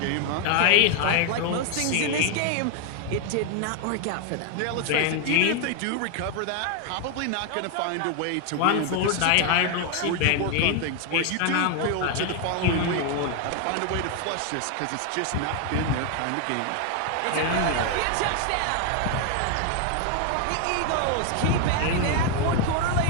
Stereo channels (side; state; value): both; different; correlation 0.01